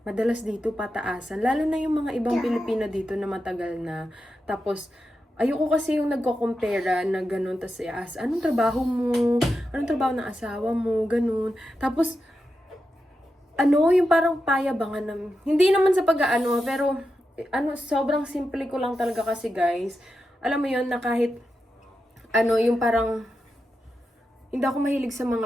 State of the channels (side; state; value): both; normal; correlation 0.89